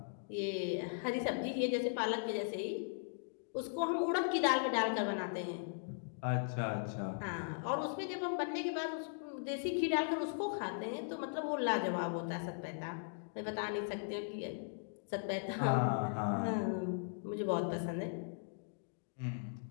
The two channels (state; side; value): silent; right; digital silence